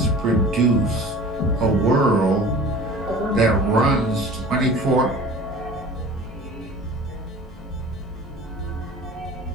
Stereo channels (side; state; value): both; normal; correlation 0.42